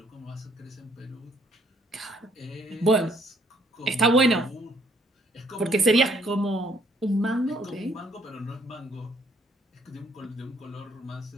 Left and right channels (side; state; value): both; normal; correlation 0.65